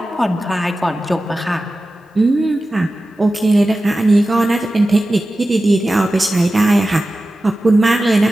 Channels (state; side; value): normal; both; correlation 0.94